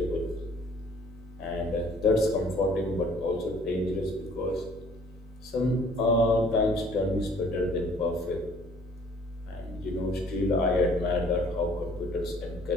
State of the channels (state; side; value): normal; both; correlation 0.56